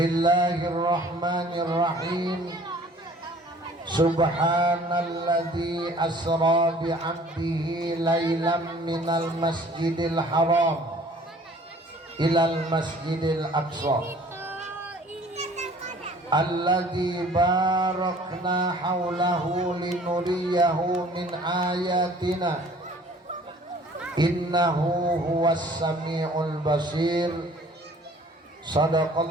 Subhanalladzi asra bi'abdihi laylam minal masjidil haram ilal masjidil aqsa alladzi barakna haulahu linuriyahu min ayatina innahu huwas sami'ul basir.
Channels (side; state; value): both; normal; correlation 0.53